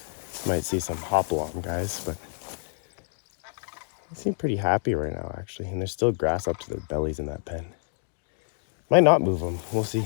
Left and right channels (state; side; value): silent; right; digital silence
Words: might see some hop along guys, but they seem pretty happy right now actually, and there's still grass up to their bellies in that pen. Might not move them, we'll see.